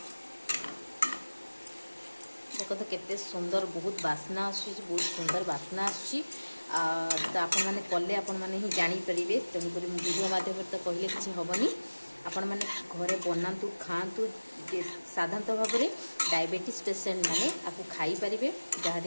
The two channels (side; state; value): both; inverted; correlation -1.00